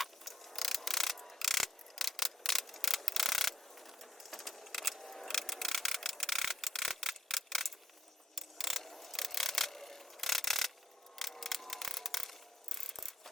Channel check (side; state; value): both; normal; correlation 0.80